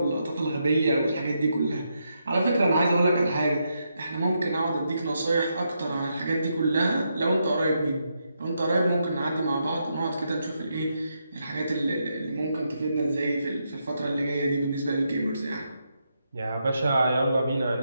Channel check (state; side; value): inverted; both; correlation -0.81